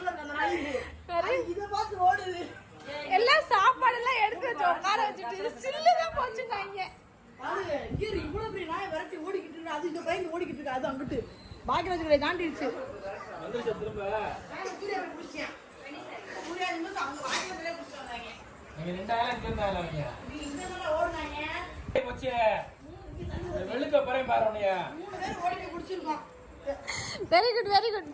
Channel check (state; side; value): identical; both; correlation 1.00